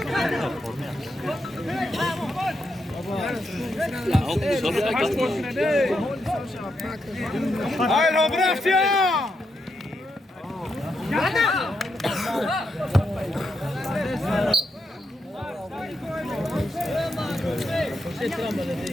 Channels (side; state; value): both; normal; correlation 0.83